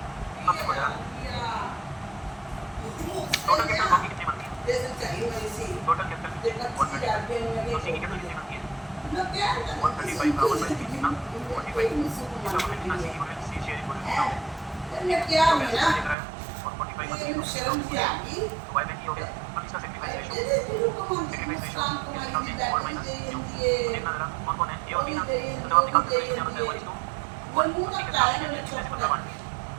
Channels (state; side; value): drops out; left; at 16.2 s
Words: अब देखो जरा टोटल कैपिटल बाकी कितनी बनती है? टोटल कैपिटल 135, तो सी की कैपिटल कितनी बनती है? 135 का 1/3 कितना? 45, इसका मतलब कितना? सी की गुडविल, सी शेयर गुडविल कितना हो गया? तो पैसे लेकर आया और 45 तो बाय बैंक ही हो गया। अब इसका सेक्रीफाइस रेशियो और माइनस क्यू, तो देखना जरा कौन कौन है ए और बी ना, तो जब आप निकालते हो क्या होता है 1:1, और सी के साथ कितने से बदला बांट दिया,